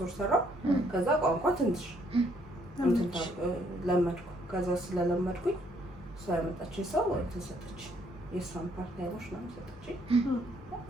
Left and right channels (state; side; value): normal; both; correlation 0.68